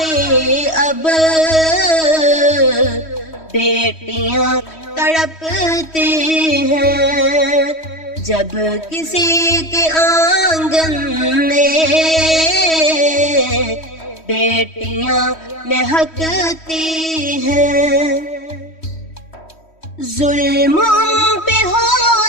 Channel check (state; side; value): late; right; 3.1 ms